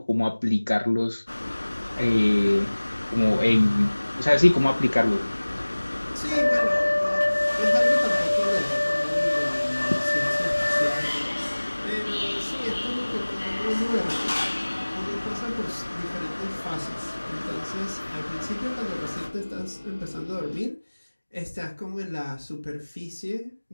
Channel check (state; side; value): inverted; both; correlation -1.00